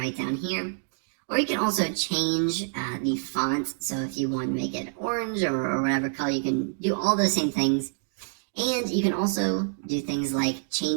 down here. Or you can also change the font. So if you want to make it orange or whatever color, you can do all those same things. And you can also do things like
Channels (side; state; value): left; silent; digital silence